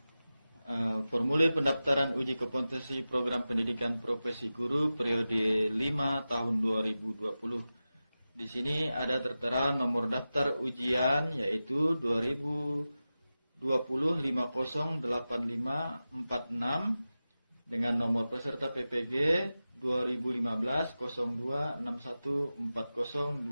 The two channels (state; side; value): inverted; both; correlation -0.94